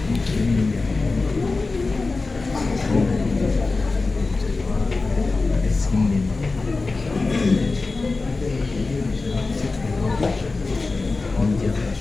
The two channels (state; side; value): quieter; right; 3.7 dB